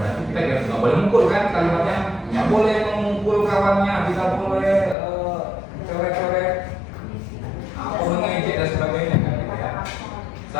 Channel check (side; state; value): right; drops out; at 5.0 s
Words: kita nggak boleh mukul kan kalimatnya? Nggak boleh memukul kawannya, tidak boleh coret-coret, atau mengejek dan sebagainya kan, gitu ya.